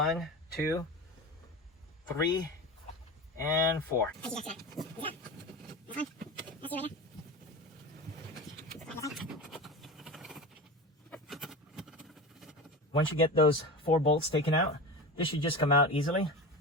2, 3, and 4. Once you get those 4 bolts taken out, this should just come out easily.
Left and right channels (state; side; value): normal; both; correlation 0.27